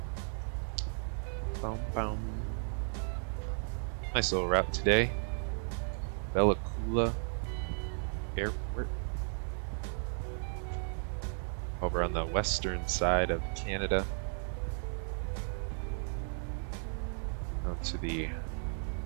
Boom, boom. Nice little route today. Bella Coola Airport. Over on the western side of Canada. Out to the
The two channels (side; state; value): left; silent; 55 dB below the other